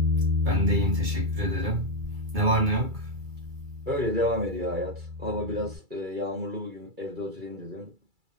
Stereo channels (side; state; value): left; late; 2.3 ms